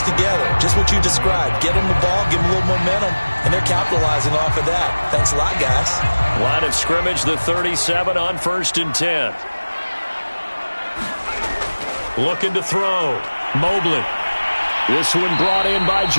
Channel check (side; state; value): both; inverted; correlation -1.00